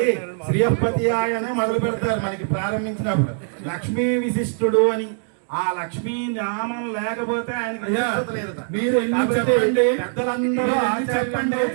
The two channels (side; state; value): left; silent; 64 dB below the other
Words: శ్రీయపతి ఆయనే మొదలు పెడతారు మనకి ప్రారంభించినప్పుడు. లక్ష్మీ విశిష్టుడు అని, ఆ లక్ష్మీ నామం లేకపోతే ఆయనకి విశిష్టత లేదట. మీరు చెప్పండి, పెద్దలందరూ చెప్పండి